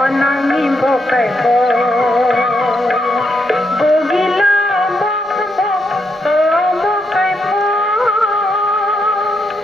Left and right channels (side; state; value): both; normal; correlation 0.79